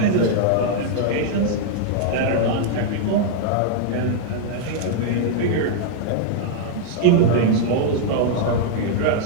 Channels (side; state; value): both; different; correlation -0.01